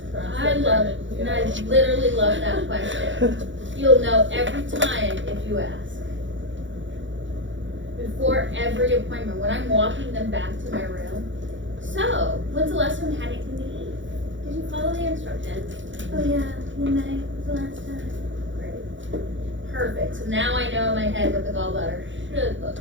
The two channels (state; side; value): late; left; 0.55 ms